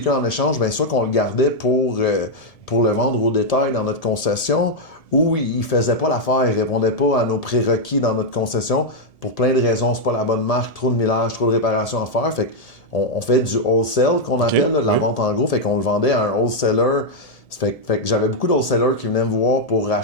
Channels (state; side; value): late; right; 1.7 ms